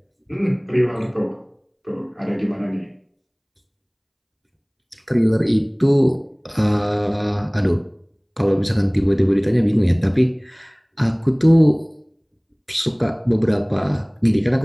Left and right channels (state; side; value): identical; both; correlation 1.00